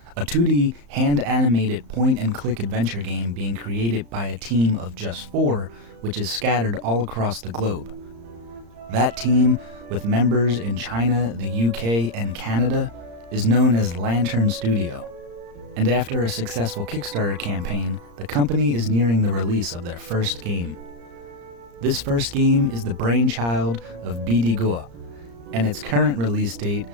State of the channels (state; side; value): late; left; 34 ms